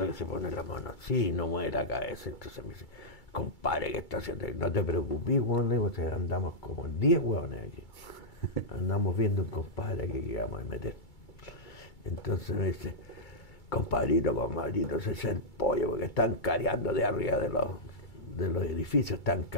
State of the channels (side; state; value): right; late; 2.3 ms